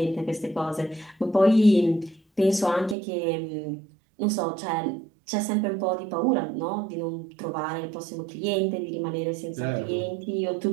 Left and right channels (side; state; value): left; drops out; at 3.0 s